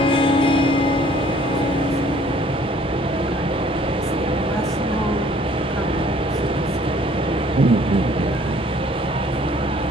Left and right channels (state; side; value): normal; both; correlation 0.57